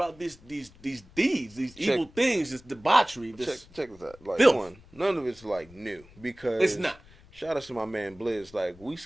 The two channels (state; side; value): noise; left; rumble, 24 dB below the sound